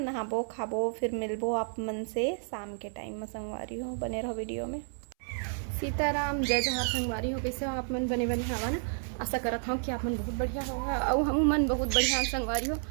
नहाबो खाबो, फिर मिलबो आप मन से शाम के टाइम में संगवारी हो। बने रहो वीडियो में। सीताराम, जय जवाहर संगवारी हो। कैसे हो आप मन? बने बने हवा ना। आशा करत हूँ कि आप मन बहुत बढ़िया होगा और हम मन बहुत बढ़िया संगवारी हो।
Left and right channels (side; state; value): left; silent; 57 dB below the other